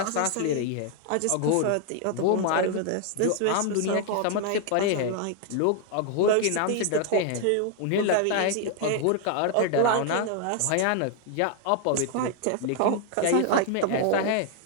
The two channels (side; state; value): both; different; correlation 0.00